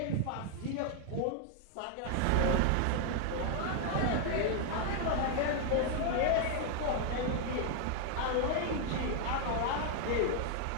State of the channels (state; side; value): different; both; correlation 0.00